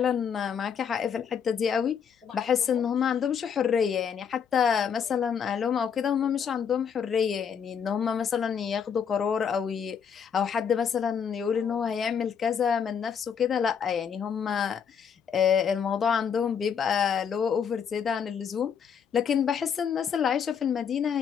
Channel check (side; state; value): right; quieter; 7.3 dB